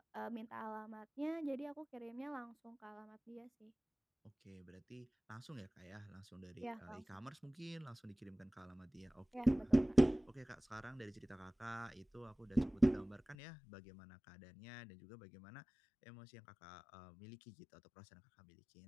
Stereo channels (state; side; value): drops out; right; at 13.4 s